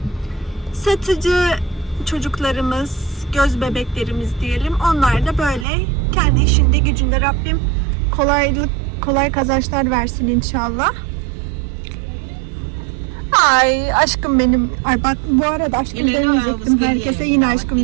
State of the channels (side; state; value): left; drops out; at 5.7 s